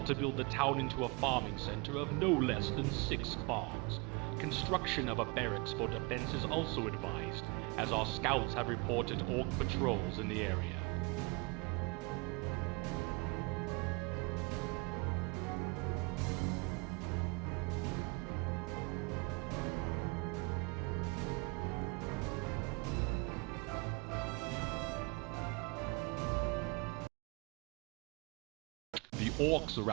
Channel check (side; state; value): left; quieter; 28.1 dB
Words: to build the town into a farming center of no less than 6 farms. Construction of a barracks for defense is also advised, as our scouts have reported orc patrols in the area. The orcs